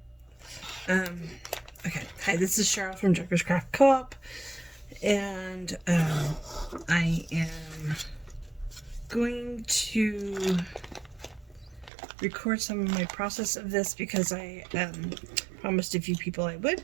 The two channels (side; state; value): left; drops out; at 11.9 s